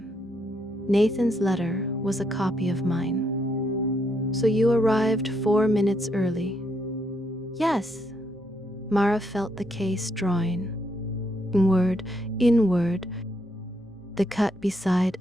Nathan's letter was a copy of mine. So you arrived 4 minutes early. Yes. Mara felt the case drawing. Inward. The cut beside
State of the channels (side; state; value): both; normal; correlation 0.76